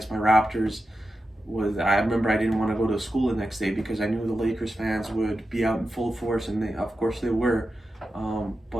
my Raptors I remember I didn't want to go to school the next day because I knew the Lakers fans would be out in full force, and of course they were.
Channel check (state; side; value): normal; both; correlation 0.91